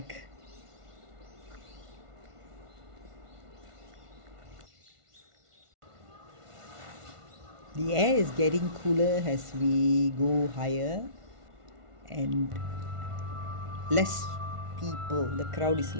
The air is getting cooler as we go higher and less people. The crowd is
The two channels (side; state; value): left; late; 1.5 ms